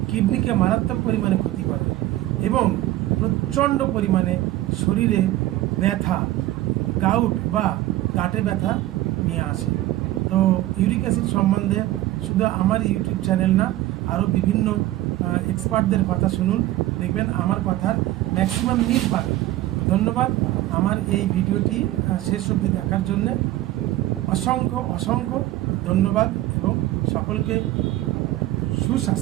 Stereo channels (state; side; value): quieter; left; 15.6 dB